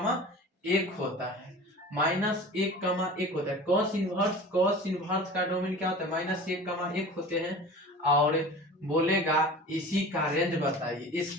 होता है, -1,1 होता है। कॉस इनवर्स का डोमेन क्या होता है? -1,1 होते हैं। और बोलेगा इसी का रेंज बताइए,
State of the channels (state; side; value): normal; both; correlation 0.38